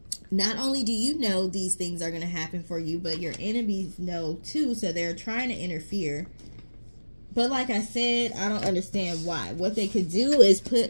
Not only do you know these things are going to happen for you, but your enemies know too, so they're trying to interfere. But like I said, I don't understand why. What they could do is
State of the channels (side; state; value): both; inverted; correlation -1.00